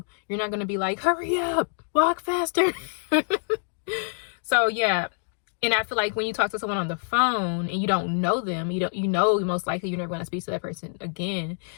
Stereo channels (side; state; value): right; silent; digital silence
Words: you're not going to be like, hurry up, walk faster. So yeah. And I feel like when you talk to someone on the phone and you don't know them, you know most likely you're never going to speak to that person again.